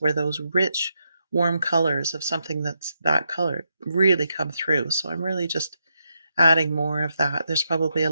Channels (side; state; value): both; inverted; correlation -0.82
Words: those rich, warm colors of something that's that color really come through. So I'm really just adding more of that. There's probably a